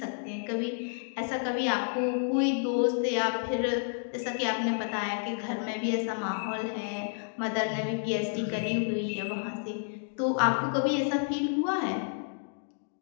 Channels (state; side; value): silent; right; digital silence